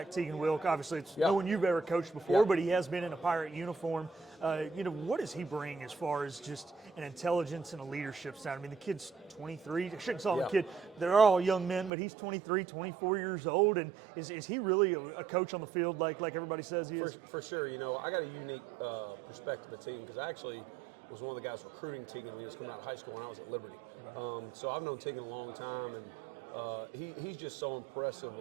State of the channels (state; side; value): drops out; left; at 11.9 s